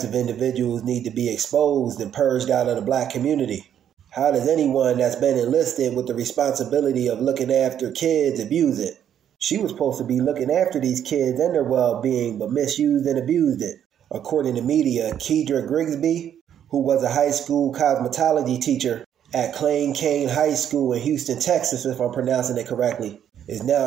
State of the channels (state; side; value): quieter; left; 9.6 dB